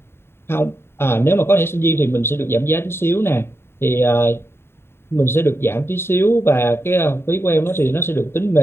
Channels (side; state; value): right; late; 0.11 ms